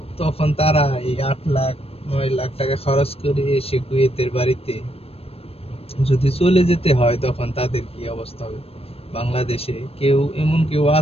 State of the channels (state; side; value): late; right; 0.28 ms